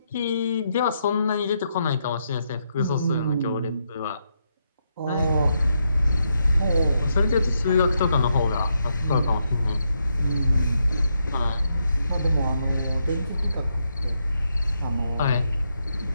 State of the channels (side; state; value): both; inverted; correlation -0.80